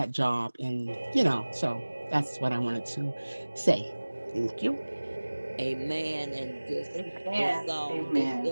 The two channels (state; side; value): inverted; both; correlation -1.00